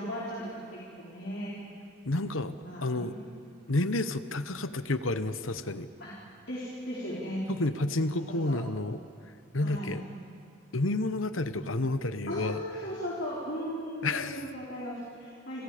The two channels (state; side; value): normal; both; correlation 0.47